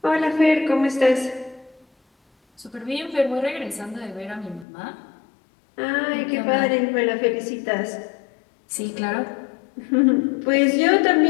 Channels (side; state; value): right; drops out; at 4.7 s